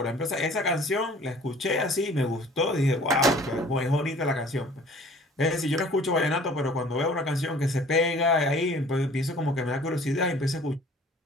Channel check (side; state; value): both; normal; correlation 0.50